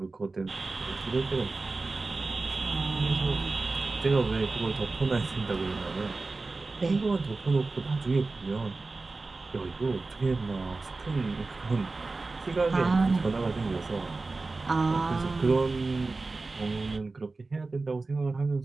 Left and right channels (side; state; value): left; quieter; 3.6 dB